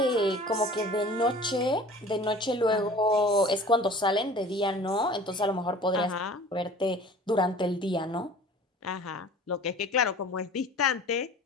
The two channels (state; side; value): normal; both; correlation 0.45